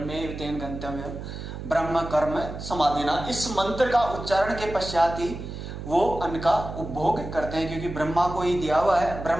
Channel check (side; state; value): right; noise; hum, 9 dB below the sound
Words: तेन गंतव्यम ब्रह्म कर्म समाधिना, इस मंत्र का उच्चारण के पश्चात ही वो अन्न का उपभोग करते हैं, क्योंकि ब्रह्मा को ही दिया हुआ है,